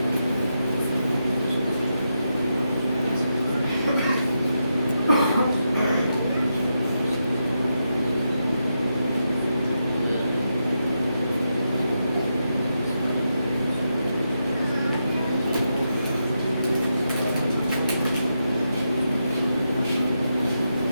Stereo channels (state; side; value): inverted; both; correlation -0.85